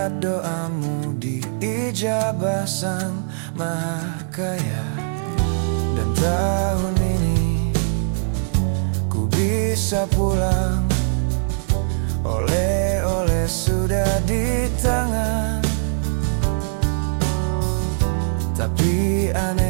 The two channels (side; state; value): left; silent; digital silence